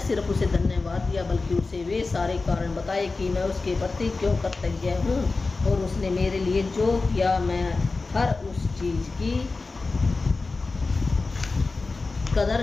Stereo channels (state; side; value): quieter; right; 3.8 dB